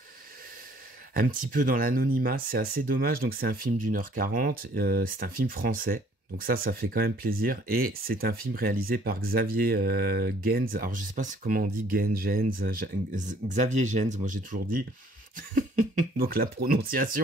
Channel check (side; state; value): both; normal; correlation 0.58